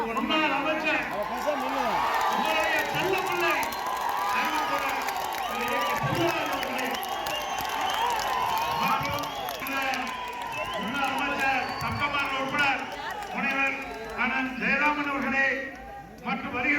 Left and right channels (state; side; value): identical; both; correlation 1.00